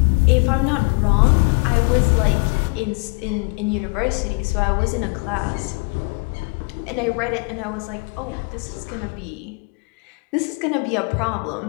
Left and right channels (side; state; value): right; quieter; 31.5 dB